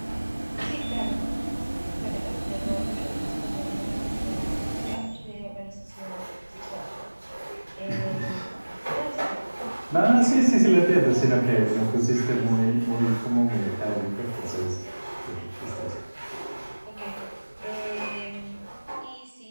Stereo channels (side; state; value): both; inverted; correlation -1.00